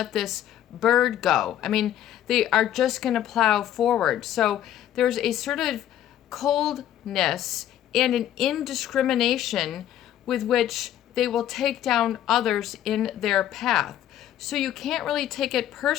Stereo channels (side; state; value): right; quieter; 11.6 dB